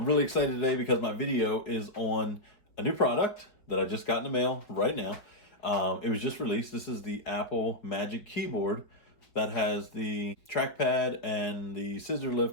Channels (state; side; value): late; right; 5.0 ms